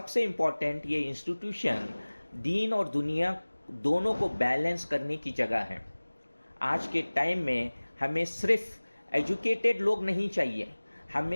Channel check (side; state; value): both; inverted; correlation -1.00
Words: इम्पॉर्टेंट, ये इंस्टीट्यूशन दीन और दुनिया दोनों को बैलेंस करने की जगह है। आज के टाइम में हमें सिर्फ एजुकेटेड लोग नहीं चाहिए,